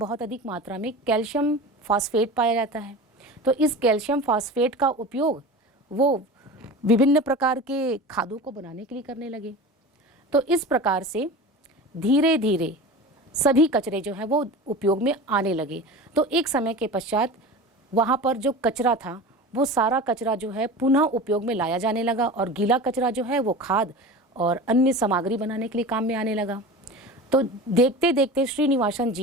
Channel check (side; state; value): both; normal; correlation 0.32